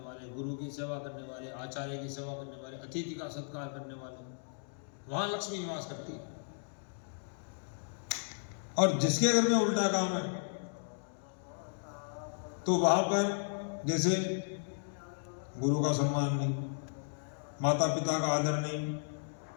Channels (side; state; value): right; silent; digital silence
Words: वाले, गुरु की सेवा करने वाले, आचार्य की सेवा करने वाले, अतिथि का सत्कार करने वाले, वहां लक्ष्मी निवास करती है। और जिसके घर में उल्टा काम है तो वहां पर जैसे गुरु का सम्मान नहीं, माता पिता का आदर नहीं,